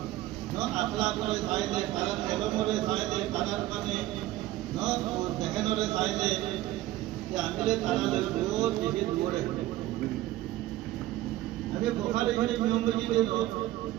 নো আখলাক করে সাইলে কারণ ইলম করে সাইলে কারণ মানে নো দেখেন করে সাইলে যে আমিলে তারালে রোজ দিকে দৌড়ে আমি বুখারী শরীফ নম্বরজি দেন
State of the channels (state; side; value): quieter; left; 15.8 dB